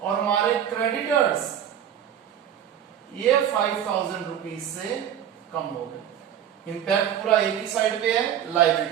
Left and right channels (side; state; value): left; quieter; 9.8 dB